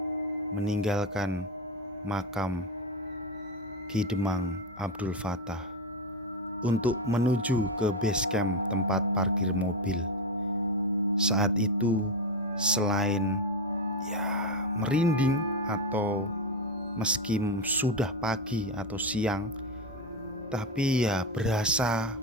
meninggalkan makam Ki Demang Abdul Fattah untuk menuju ke base camp tempat parkir mobil. Saat itu selain ya merinding atau meski sudah pagi atau siang, tapi ya berasa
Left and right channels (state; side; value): normal; both; correlation 0.13